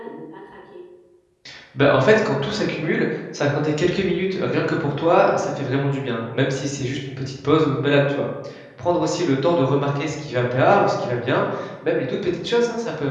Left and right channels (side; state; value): both; identical; correlation 1.00